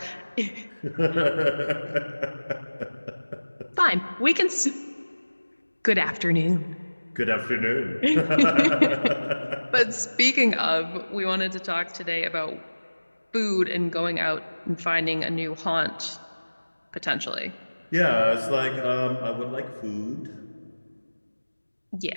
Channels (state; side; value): inverted; both; correlation -1.00